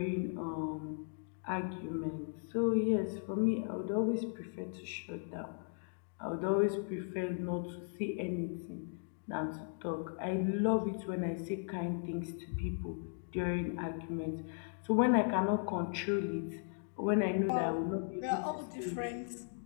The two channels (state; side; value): silent; right; digital silence